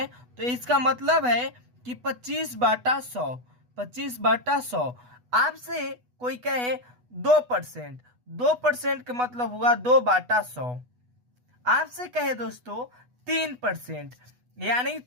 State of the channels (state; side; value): late; left; 8.1 ms